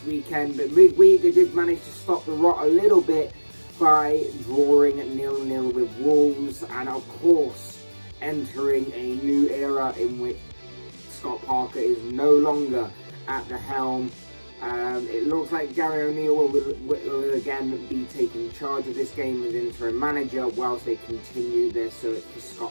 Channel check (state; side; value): inverted; both; correlation -1.00